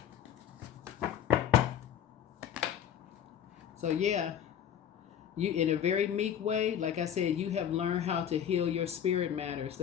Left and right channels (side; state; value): right; quieter; 9.3 dB